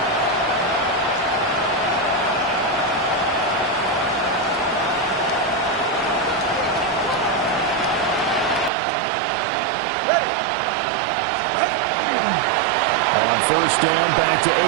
First down, back to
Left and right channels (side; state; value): left; drops out; at 8.7 s